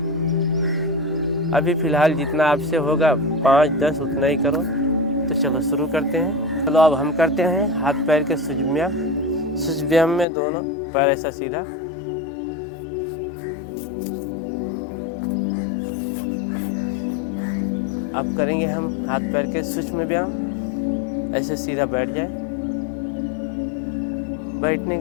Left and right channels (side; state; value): right; drops out; at 10.2 s